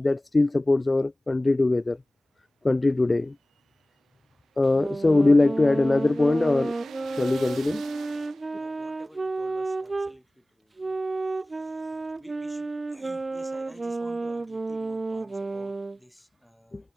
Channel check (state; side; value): normal; both; correlation 0.98